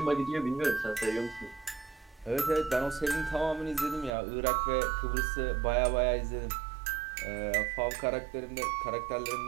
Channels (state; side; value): drops out; left; at 4.1 s